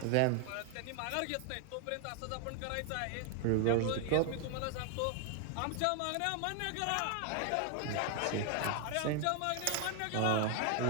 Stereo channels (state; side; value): different; both; correlation 0.00